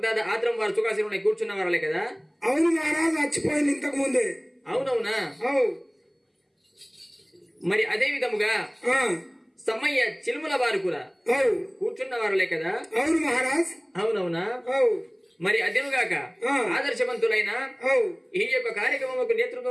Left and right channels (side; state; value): both; identical; correlation 1.00